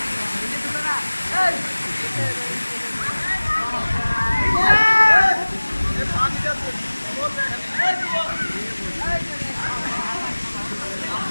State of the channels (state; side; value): inverted; both; correlation -1.00